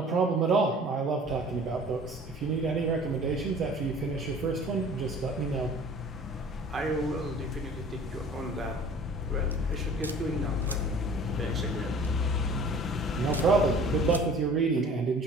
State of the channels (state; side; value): normal; both; correlation 0.47